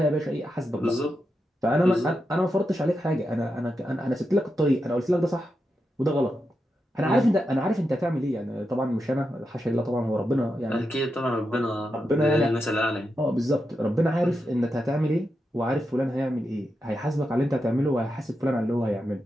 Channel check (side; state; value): both; normal; correlation 0.87